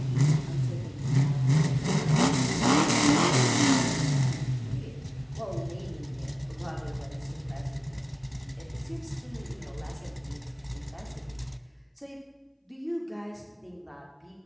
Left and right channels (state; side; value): identical; both; correlation 1.00